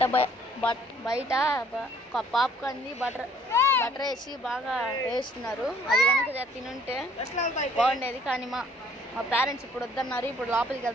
బయట పాప్కార్న్ బటర్ వేసి బాగా వేస్తున్నారు. అది కనుక తినుంటే బాగుండేది, కానీ మా పేరెంట్స్ ఇప్పుడు వద్దన్నారు. ఇప్పుడు లోపలికి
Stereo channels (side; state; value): both; normal; correlation 0.59